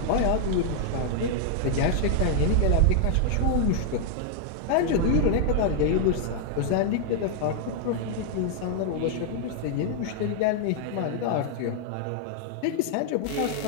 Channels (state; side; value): different; both; correlation 0.00